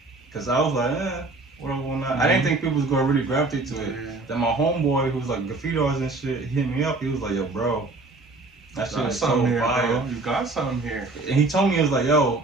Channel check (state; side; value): quieter; left; 3.3 dB